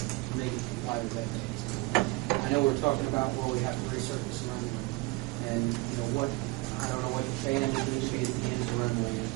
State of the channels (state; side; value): quieter; left; 23.5 dB